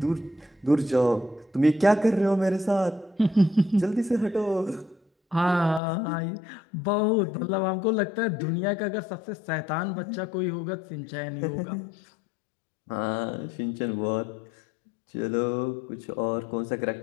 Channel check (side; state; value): right; drops out; at 5.8 s